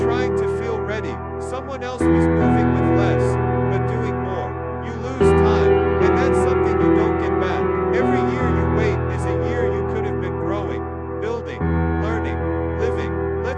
to feel ready. Someone else was moving with less, but doing more. You lose time, and that's something you don't get back. Every year you wait is a year you could have been growing, building, learning, living.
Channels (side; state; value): both; identical; correlation 1.00